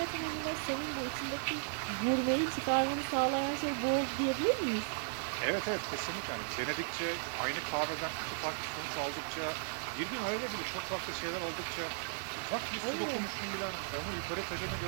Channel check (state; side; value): silent; left; digital silence